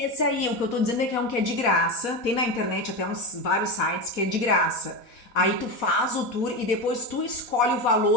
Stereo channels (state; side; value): late; right; 4.1 ms